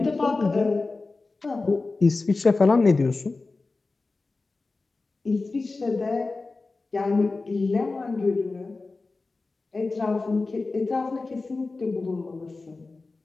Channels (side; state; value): right; quieter; 3.6 dB